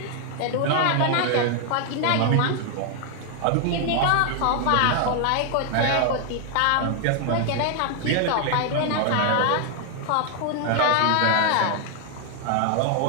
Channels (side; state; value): both; different; correlation 0.00